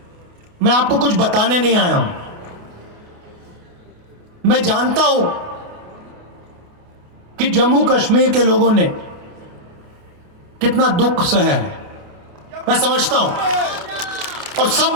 मैं आपको कुछ बताने नहीं आया हूं। मैं जानता हूं कि जम्मू कश्मीर के लोगों ने कितना दुख सहा है, मैं समझता हूं। और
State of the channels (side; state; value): left; late; 28 ms